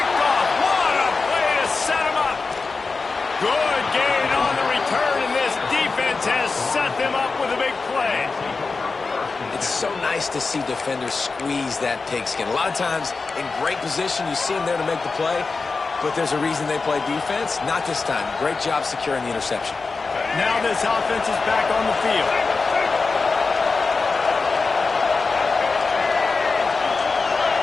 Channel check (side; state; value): right; quieter; 4.2 dB